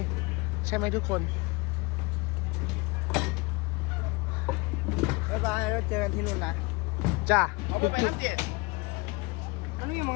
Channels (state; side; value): quieter; right; 25.8 dB